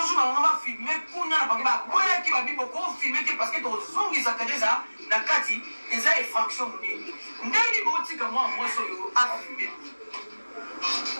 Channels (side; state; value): both; inverted; correlation -1.00